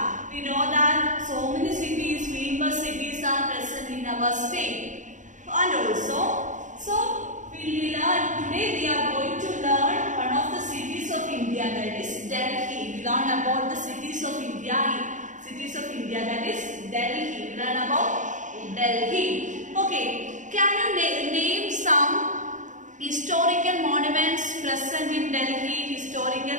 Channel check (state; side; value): late; left; 0.36 ms